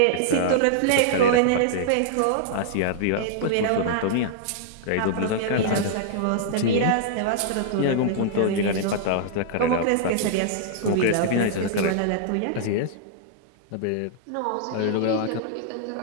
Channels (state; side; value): different; both; correlation -0.01